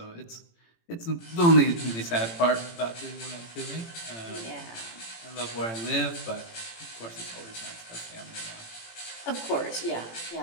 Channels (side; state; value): right; late; 18 ms